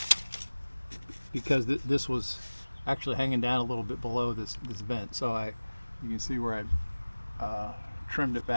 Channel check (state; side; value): inverted; both; correlation -1.00